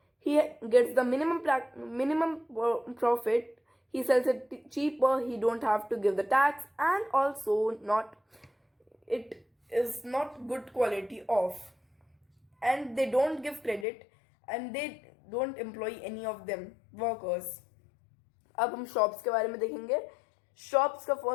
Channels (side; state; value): right; drops out; at 13.9 s